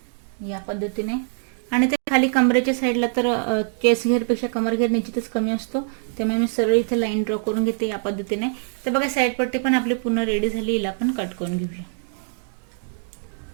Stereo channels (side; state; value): left; silent; 62 dB below the other